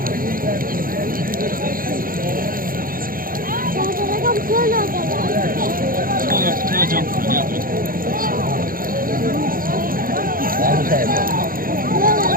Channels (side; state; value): left; late; 0.41 ms